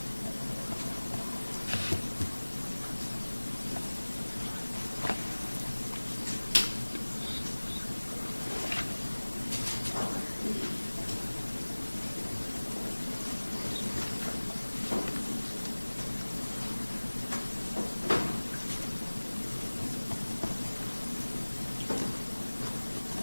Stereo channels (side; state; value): both; inverted; correlation -1.00